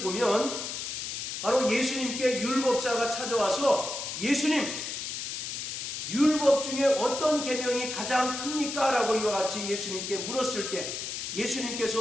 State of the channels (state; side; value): noise; left; hiss, 5 dB below the sound